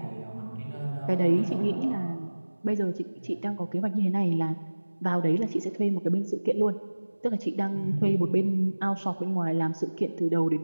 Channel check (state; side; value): inverted; both; correlation -1.00